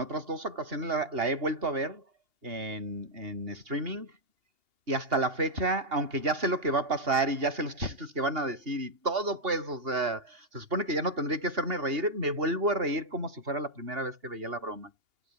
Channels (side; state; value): left; late; 2.8 ms